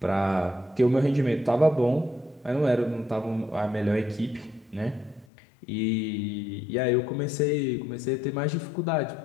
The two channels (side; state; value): right; drops out; at 5.2 s